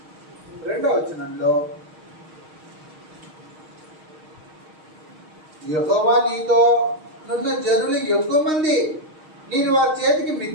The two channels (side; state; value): left; late; 6.4 ms